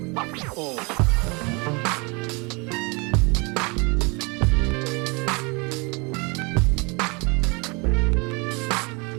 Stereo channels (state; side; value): quieter; left; 29.5 dB